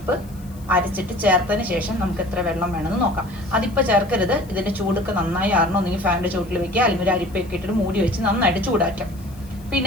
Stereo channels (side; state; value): left; noise; hiss, 25 dB below the sound